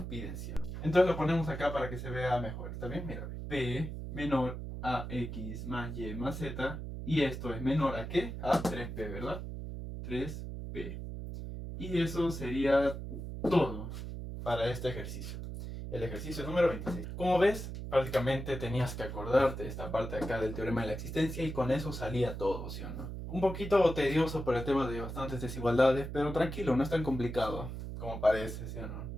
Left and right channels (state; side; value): noise; right; hum, 7 dB below the sound